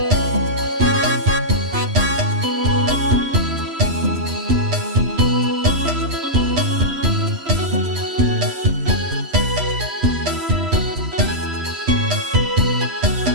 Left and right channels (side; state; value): left; late; 11 ms